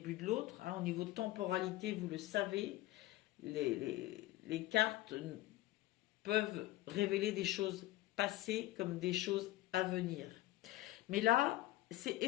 de l'autre. Au niveau de temporalité, vous le savez, les cartes peuvent révéler des choses passées comme des choses à venir. Mais là, c'est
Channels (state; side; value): quieter; right; 16.9 dB